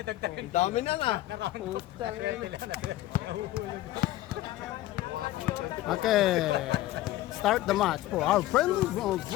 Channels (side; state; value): right; quieter; 15.4 dB